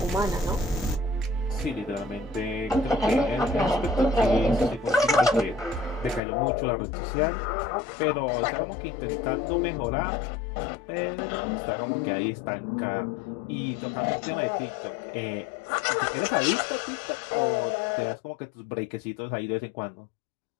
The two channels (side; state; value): right; drops out; at 6.2 s